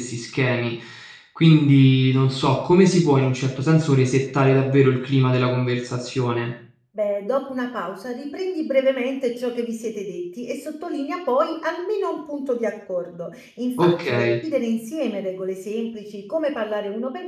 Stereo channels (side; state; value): both; identical; correlation 1.00